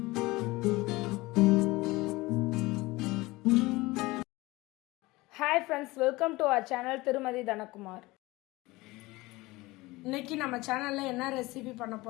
friends, welcome to our channel Thirumathi Dhanakumar. இன்னைக்கு நம்ம சேனல்ல என்ன ரெசிபி பண்ண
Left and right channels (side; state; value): right; quieter; 20.9 dB